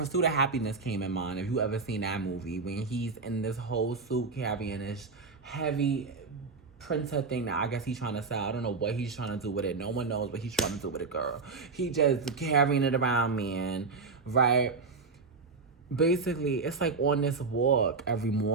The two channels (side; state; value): left; quieter; 4.4 dB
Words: of Happiness came in mind. If you ever seen that movie, when he's in this whole suit carrying this heavy printer thing that I guess he's trying to sell. I don't know what he's trying to do with it. No one knows what he's trying to do with it, girl. He just carrying it around, man, right? Basically, it's like on this walk every